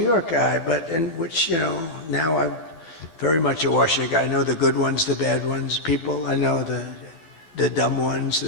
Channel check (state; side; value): late; right; 12 ms